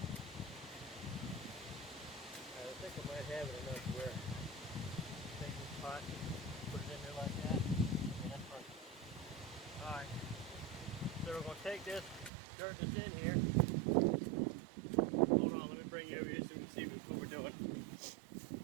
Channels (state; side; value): drops out; left; at 12.3 s